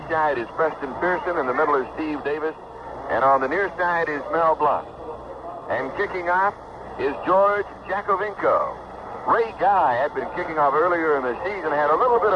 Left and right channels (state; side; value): identical; both; correlation 1.00